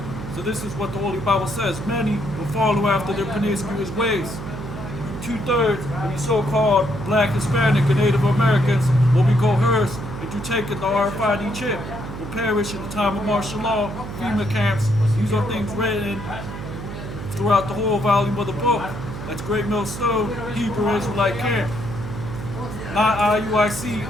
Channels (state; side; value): noise; right; hum, 9 dB below the sound